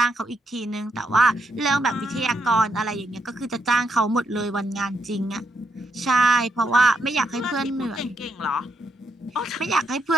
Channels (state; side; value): normal; both; correlation 0.78